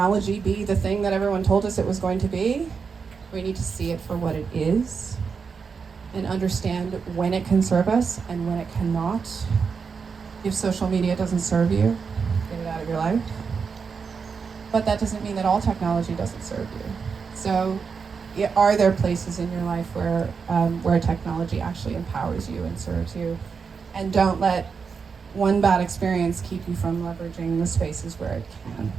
be the thing that everyone told us it was going to be. We need to see it for what it is and understand when it can serve us and when it cannot. If social media doesn't serve you, get it out of your life. But that doesn't mean that all technology doesn't serve you. So are there places in your life where technology actually empowers you and serves you? And don't let one bad experience keep you from leveraging the spaces where it can.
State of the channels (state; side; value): quieter; left; 5.6 dB